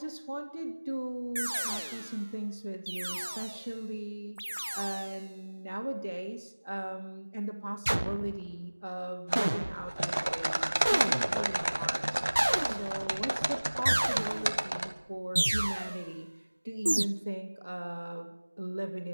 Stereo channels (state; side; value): inverted; both; correlation -1.00